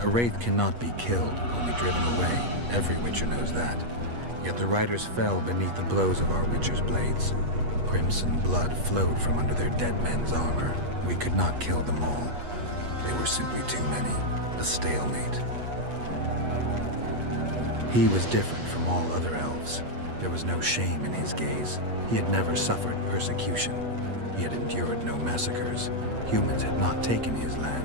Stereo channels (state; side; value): late; left; 8.3 ms